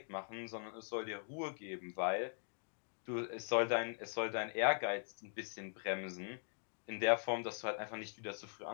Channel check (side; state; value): right; silent; digital silence